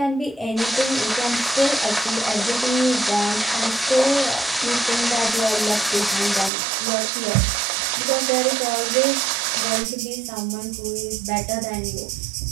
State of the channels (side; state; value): left; drops out; at 6.5 s